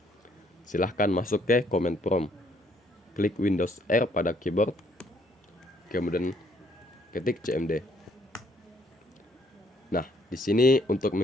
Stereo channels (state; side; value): normal; both; correlation 0.66